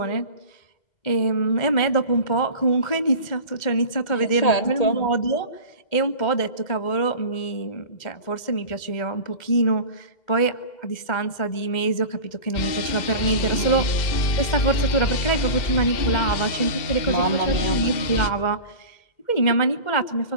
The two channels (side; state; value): right; late; 2.1 ms